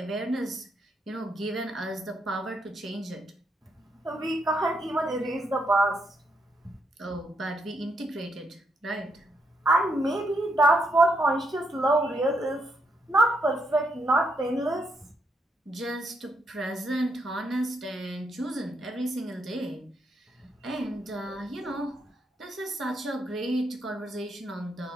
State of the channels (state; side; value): normal; both; correlation 0.78